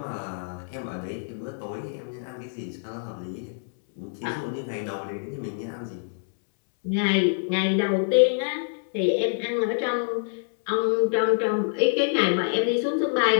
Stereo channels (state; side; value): silent; right; 61 dB below the other